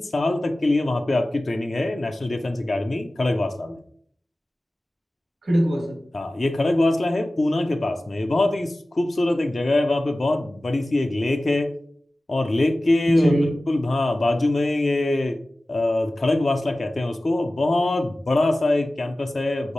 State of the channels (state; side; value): normal; both; correlation 0.97